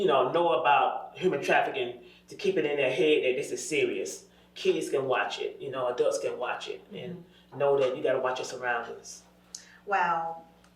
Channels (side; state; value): both; identical; correlation 1.00